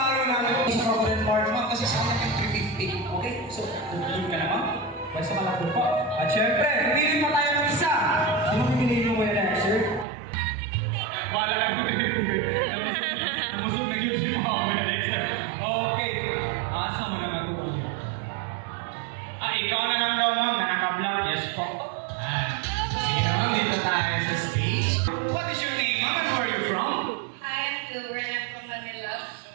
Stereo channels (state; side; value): drops out; left; at 10.1 s